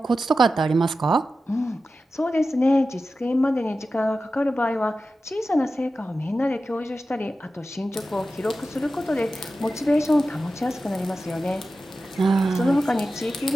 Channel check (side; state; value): both; normal; correlation 0.93